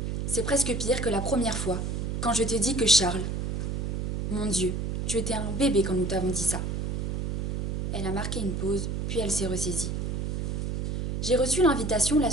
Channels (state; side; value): noise; right; hum, 1 dB below the sound